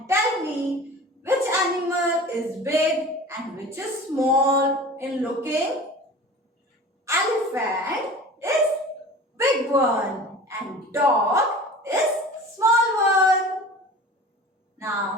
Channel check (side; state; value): both; normal; correlation 0.39